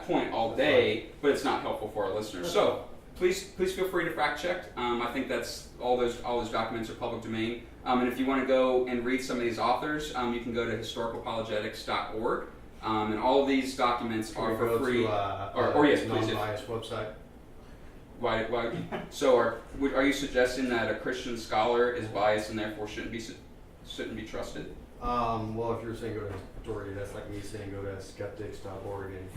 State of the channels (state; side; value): identical; both; correlation 1.00